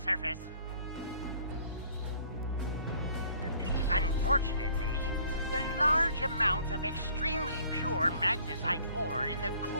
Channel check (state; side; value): inverted; both; correlation -0.57